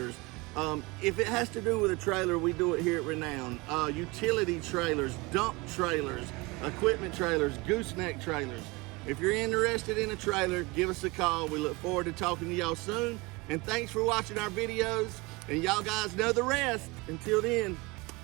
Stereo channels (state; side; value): quieter; left; 24.7 dB